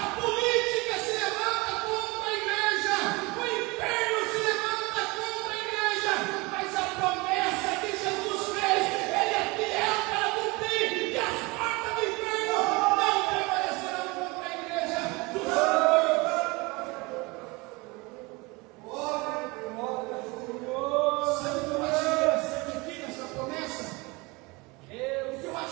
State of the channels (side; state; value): left; quieter; 25.2 dB